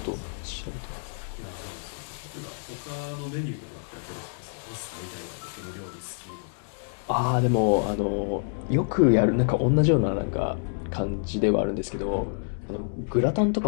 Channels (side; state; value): right; silent; digital silence